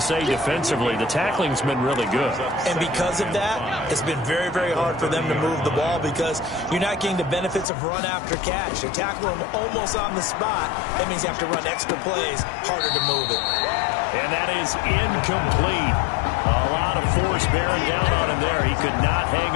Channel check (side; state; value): right; drops out; at 7.7 s